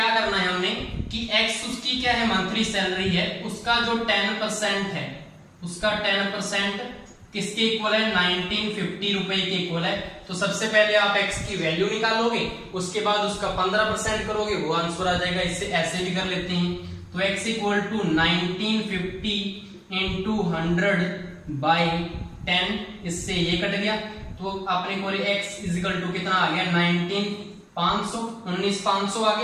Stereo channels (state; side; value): identical; both; correlation 1.00